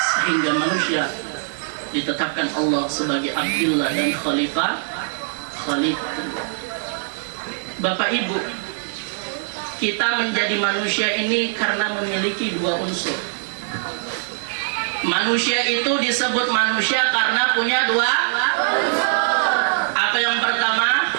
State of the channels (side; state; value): left; silent; 64 dB below the other